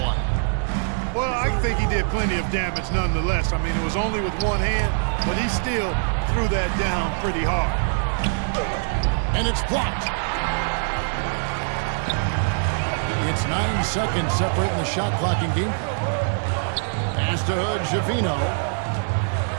Well, I think he did plenty of damage nonetheless. I mean, it was only with one hand, but he still threw that down pretty hard. And it's blocked. It's 9 seconds separating the shot clock in game. Pass to Javino.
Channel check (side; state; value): left; silent; 63 dB below the other